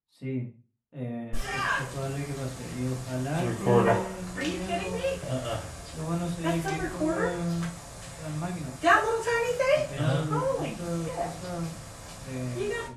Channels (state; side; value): identical; both; correlation 1.00